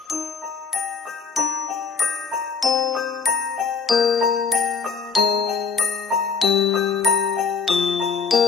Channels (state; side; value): quieter; right; 5.4 dB